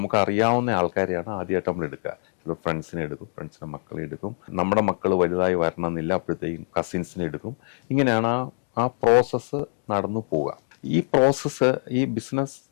അറിയാവുന്ന ആൾക്കാരെയാണ് ആദ്യമായിട്ട് നമ്മൾ എടുക്കുക. ചിലപ്പോൾ ഫ്രണ്ട്സിനെ എടുക്കും, ഫ്രണ്ട്സിൻ്റെ മക്കളെ എടുക്കും, നമ്മുടെ മക്കൾ വലുതായി വരണമെന്നില്ല, അപ്പോഴത്തേക്കും കസിൻസിനെ എടുക്കും. ഇങ്ങനെയാണ് ആ പ്രോസസ്സ് നടന്നു പോവുക. ഈ പ്രോസസ്സ് ഈ ബിസിനസ്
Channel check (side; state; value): right; silent; digital silence